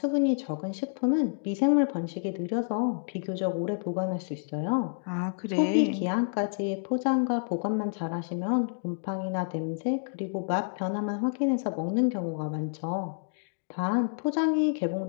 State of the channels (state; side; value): silent; right; digital silence